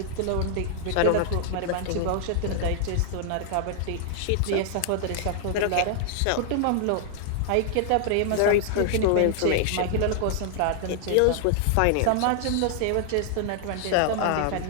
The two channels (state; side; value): different; both; correlation -0.01